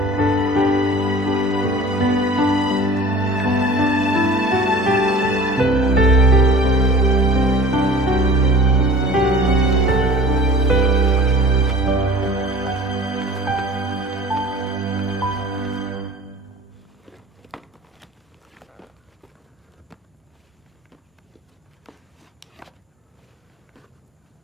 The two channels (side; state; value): both; normal; correlation 0.44